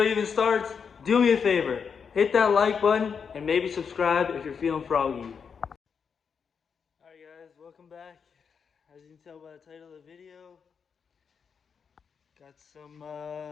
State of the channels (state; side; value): quieter; right; 6.3 dB